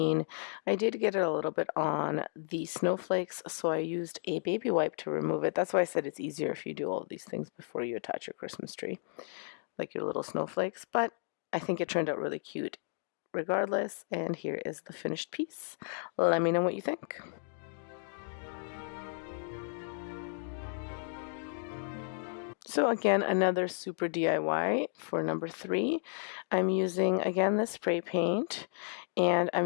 I did get it a little bit on the snowflakes, so I used a baby wipe to remove it. That's why I said it's easier if you do all of these things before you attach your Christmas tree, like your little snowflakes, but I think it turned out really cute regardless, and here is the finished piece. Let me know what you think. So again, another super DIY for number 3. I'm using, again, this spray paint, and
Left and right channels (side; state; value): right; silent; digital silence